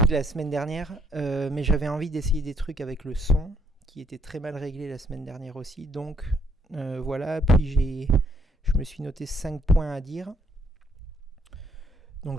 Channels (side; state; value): both; normal; correlation 0.69